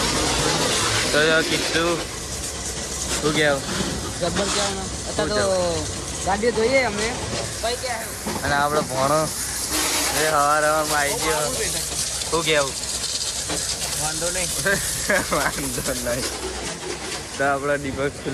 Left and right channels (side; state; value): both; identical; correlation 1.00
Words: તો કીધું શું કહેવું જબ્બર કહેવાનું અત્યારે તો ગાડી જોઈએ અમે કઈ કે અને આપણો ભણો એ હવારમાં આવી ગયો. શું કહેવું વાંધો નહીં વાંધો નહીં. તો આપણા દીપક